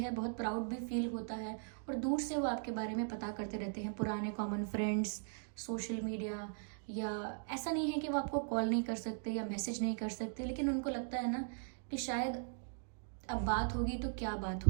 बहुत प्राउड भी फील होता है। और दूर से वो आपके बारे में पता करते रहते हैं, पुराने कॉमन फ्रेंड्स, सोशल मीडिया, या ऐसा नहीं है कि वो आपको कॉल नहीं कर सकते या मैसेज नहीं कर सकते, लेकिन उनको लगता है ना कि शायद अब बात होगी तो क्या बात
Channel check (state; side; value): silent; left; digital silence